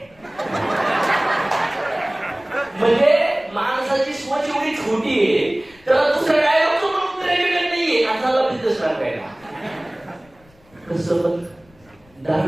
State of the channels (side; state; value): left; noise; rumble, 29 dB below the sound